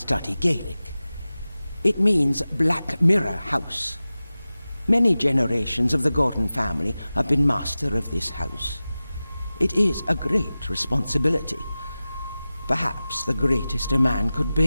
Gaelic. It means Black Mirror House. Many generations of the Gordon family have been master of this house. It is a great responsibility. Perhaps the greatest a man could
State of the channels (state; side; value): inverted; both; correlation -0.96